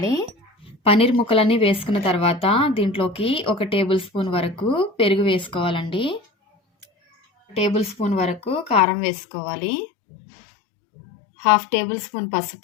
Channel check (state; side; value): drops out; right; at 8.8 s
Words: పనీర్ ముక్కలన్నీ వేసుకున్న తర్వాత దీంట్లోకి 1 టేబుల్ స్పూన్ వరకు పెరుగు వేసుకోవాలండి. టేబుల్ స్పూన్ వరకు కారం వేసుకోవాలి. 1/2 టేబుల్ స్పూన్